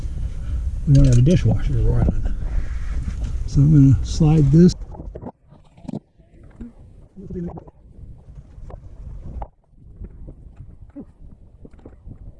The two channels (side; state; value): both; identical; correlation 1.00